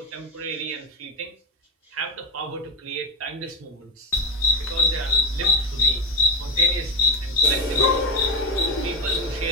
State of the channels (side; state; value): both; normal; correlation 0.09